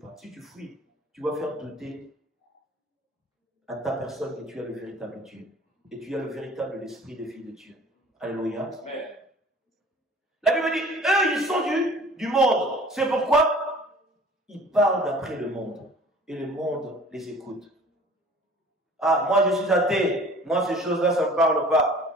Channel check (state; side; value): normal; both; correlation 0.48